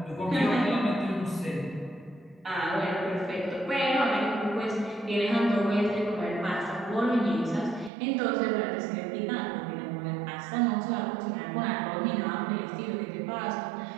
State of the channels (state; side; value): drops out; left; at 7.9 s